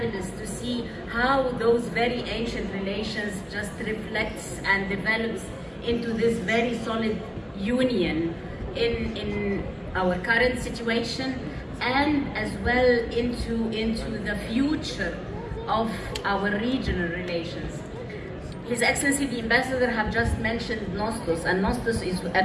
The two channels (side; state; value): both; identical; correlation 1.00